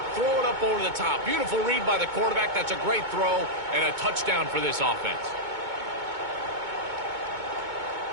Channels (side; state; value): left; late; 2.2 ms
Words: throw it up over the top. Beautiful read by the quarterback. That's a great throw and a touchdown for this offense.